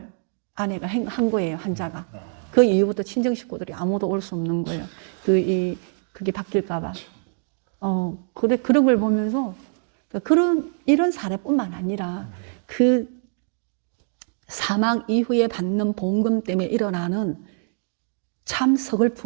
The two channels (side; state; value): left; silent; 63 dB below the other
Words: 아내가 한 거예요, 환자가. 그 이후부터 친정 식구들이 아무도 올 수 없는 거예요. 그게 바뀔까봐. 그런 걸 보면서 이런 사례뿐만 아니라 그 사망 이후에 받는 보험금 때문에 일어나는 참